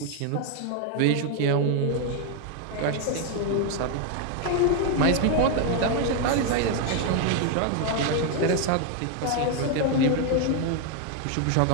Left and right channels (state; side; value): different; both; correlation 0.01